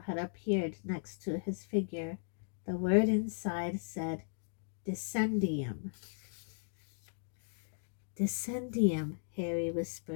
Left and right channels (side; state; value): right; silent; digital silence